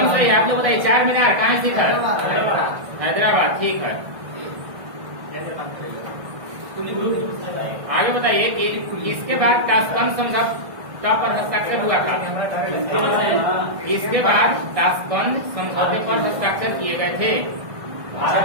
सही। आप लोग बताइए चार मीनार कहाँ स्थित है? हैदराबाद, ठीक है। आगे बताइए कि इसके बाद ताशकंद समझौता पर हस्ताक्षर हुआ था। इसके बाद ताशकंद समझौते पर हस्ताक्षर किए गए थे।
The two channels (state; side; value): late; left; 1.6 ms